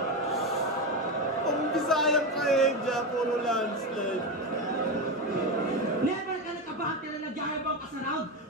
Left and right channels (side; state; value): both; normal; correlation 0.15